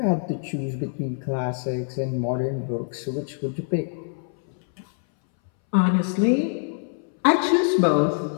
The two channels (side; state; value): right; silent; 61 dB below the other